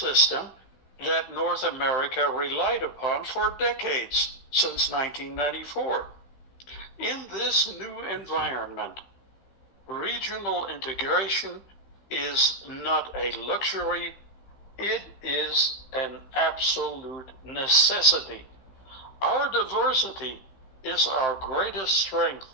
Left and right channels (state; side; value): late; right; 16 ms